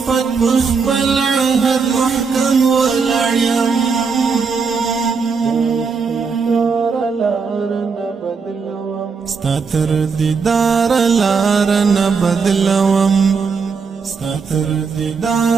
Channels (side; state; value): left; quieter; 5.3 dB